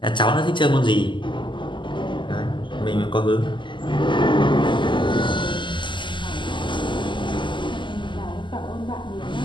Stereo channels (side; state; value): right; late; 0.23 ms